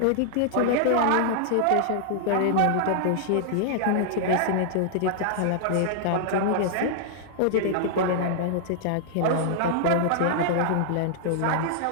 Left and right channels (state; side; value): different; both; correlation -0.01